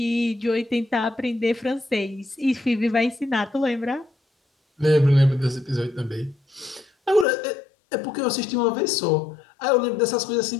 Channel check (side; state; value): right; drops out; at 7.2 s